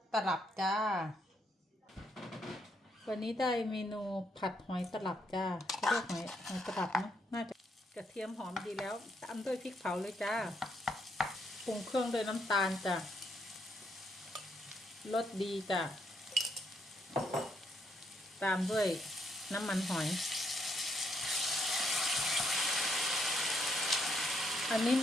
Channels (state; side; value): normal; both; correlation 0.74